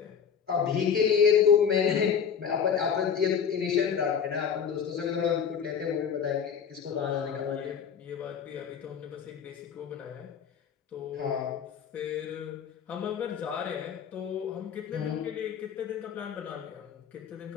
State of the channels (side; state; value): right; quieter; 7.3 dB